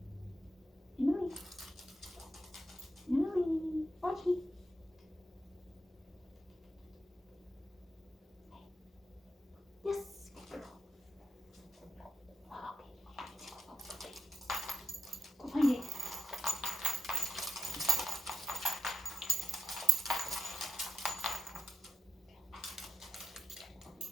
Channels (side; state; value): both; normal; correlation 0.86